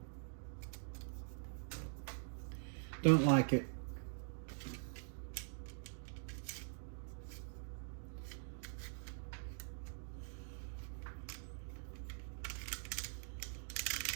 Don't like it.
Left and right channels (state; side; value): silent; left; digital silence